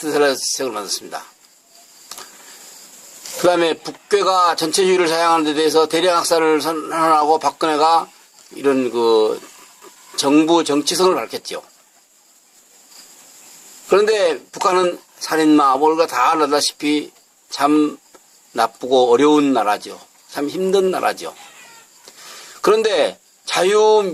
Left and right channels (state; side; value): identical; both; correlation 1.00